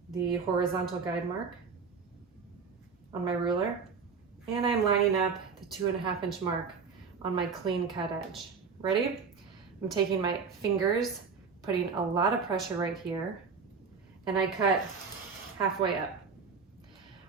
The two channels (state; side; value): quieter; left; 5.4 dB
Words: the horizontal guide mark on my ruler, and I'm lining up the 2.5-inch mark on my clean cut edge. Ready? I'm taking my fingers, putting a lot of pressure right here, and I cut halfway up.